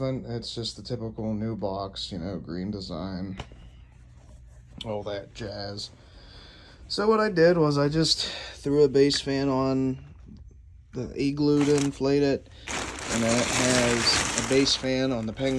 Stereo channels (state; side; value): identical; both; correlation 1.00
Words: It's just the typical new box, green design, all that jazz. So what I did was I just threw a base fan on the igloo to inflate it, and then it has a base fan on the